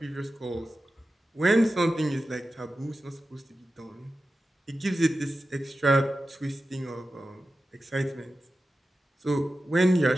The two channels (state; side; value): normal; both; correlation 0.93